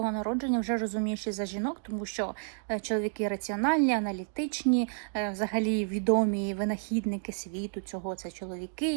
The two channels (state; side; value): silent; left; digital silence